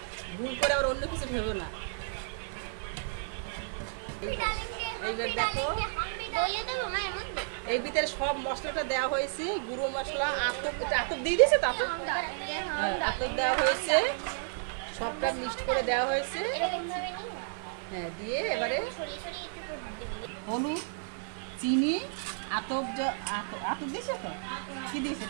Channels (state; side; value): silent; left; digital silence